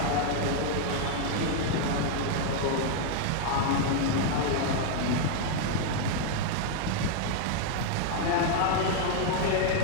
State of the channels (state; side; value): different; both; correlation 0.00